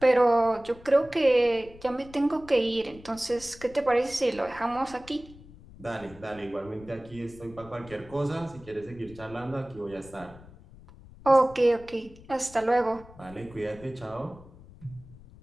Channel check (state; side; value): noise; left; rumble, 20 dB below the sound